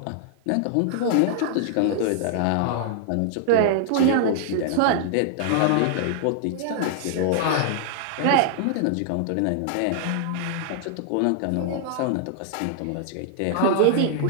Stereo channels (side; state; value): both; different; correlation -0.01